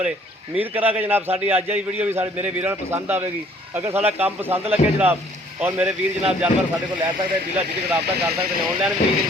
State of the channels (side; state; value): both; normal; correlation 0.59